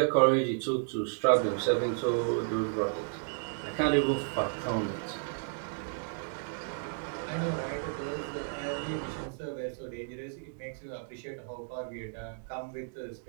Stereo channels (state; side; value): silent; left; digital silence